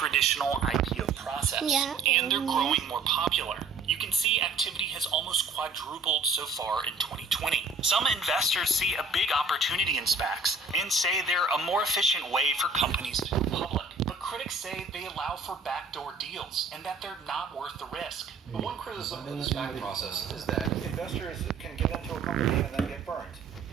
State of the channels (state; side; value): quieter; left; 4.0 dB